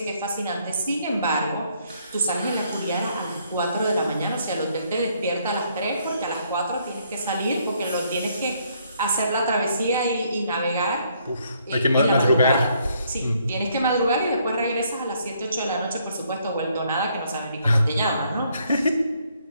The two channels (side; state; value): both; inverted; correlation -0.69